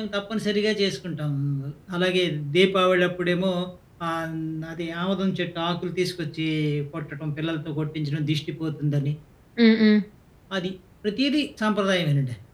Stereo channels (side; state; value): both; identical; correlation 1.00